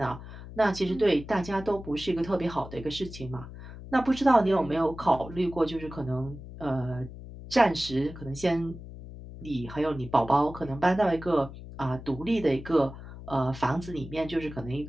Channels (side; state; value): left; noise; hum, 13 dB below the sound